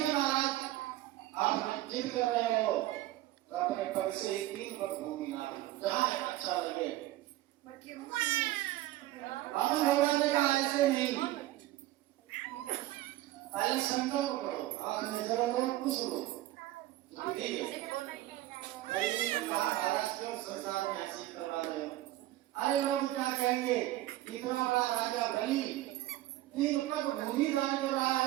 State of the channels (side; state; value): left; quieter; 15.9 dB